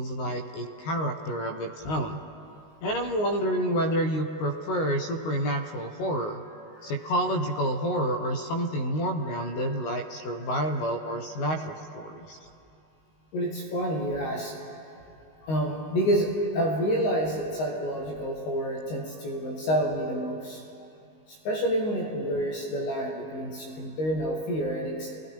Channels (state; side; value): late; right; 19 ms